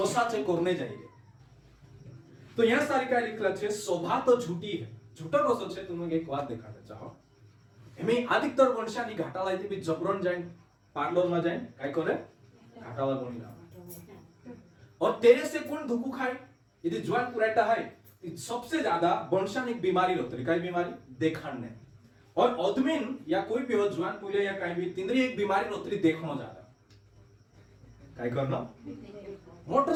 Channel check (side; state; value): both; identical; correlation 1.00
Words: से करने जाइए तो यहाँ सारी का लिखला छे शोभा तो झूठी है झूठा कसो छे तुम्हें एक बात दिखाते चाहो एमे अधिकतर वंशानी घाटाला इथे भी जबरन जाए पार्लर में जाए काय करे घाटाला बनी ना और तेरे से कौन धुकू खाए यदि ज्वान पुराटा है सबसे ज्यादा वंशानी बीमारी होती काय बीमारी देखाने और अदमिन या कोई भी हो ज्वान पुले या कहीं भी तिंद्री एक बीमारी होती देखनो ज्यादा काय करना